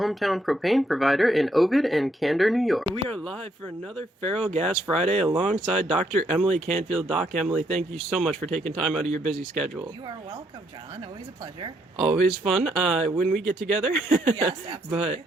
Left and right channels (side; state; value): both; normal; correlation 0.73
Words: propane provider in Ovid and Candor, New York. We are live for another FerrellGas Friday alongside Dr. Emily Canfield. Doc Emily, thank you so much for taking time out of your busy schedule. You are welcome, John. Always a pleasure. Always fun when we get together. Yes, absolutely.